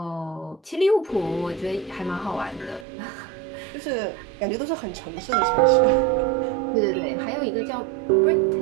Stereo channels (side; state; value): left; drops out; at 2.9 s